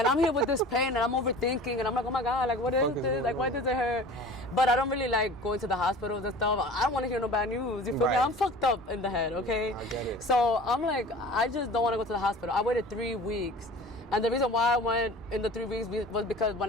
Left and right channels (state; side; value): normal; both; correlation 0.41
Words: I'm here with this pain, and I'm overthinking, and I'm like, oh my God, like, what is this? Like, why does it hurt? But I don't really like going to the hospitals and stuff. I don't want to hear no bad news. You feel me? I'm fucked up in the head, okay? I get it. So I'm like, I just don't want to go to the hospital. I waited 3 weeks. And the reason why I went in the 3 weeks was because when